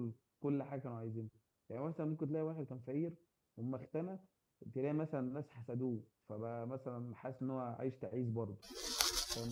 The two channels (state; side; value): identical; both; correlation 1.00